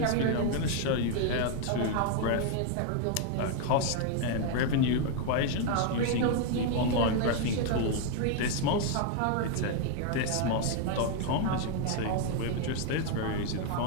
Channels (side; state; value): both; different; correlation 0.00